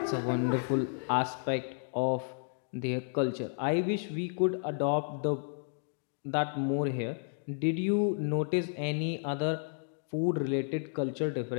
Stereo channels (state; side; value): silent; right; digital silence